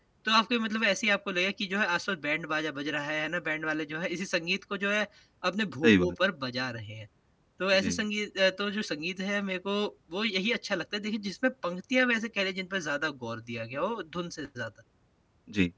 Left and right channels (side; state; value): both; identical; correlation 1.00